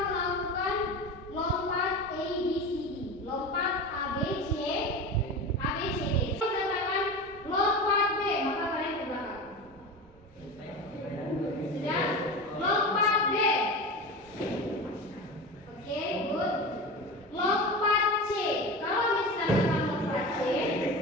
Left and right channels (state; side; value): normal; both; correlation 0.28